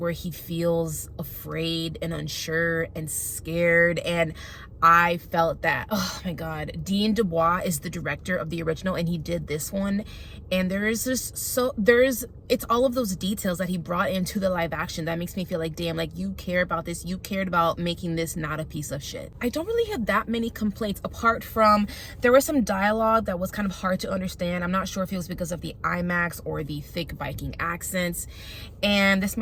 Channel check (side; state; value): both; identical; correlation 1.00